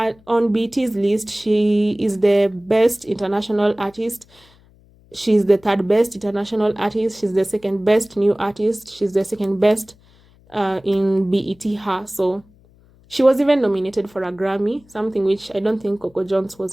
BT's list, she is the best international artist. She's the third best international artist. She's the second best new artist. She's the second best in BET her. So she was even nominated for a Grammy, something which I don't think Coco Jones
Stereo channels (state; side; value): noise; left; hum, 29 dB below the sound